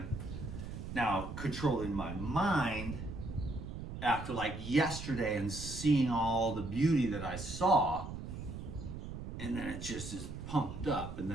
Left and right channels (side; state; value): right; noise; rumble, 8 dB below the sound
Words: Now, controlling my mind after like yesterday and seeing all the beauty that I saw, and then it just is pumped up, and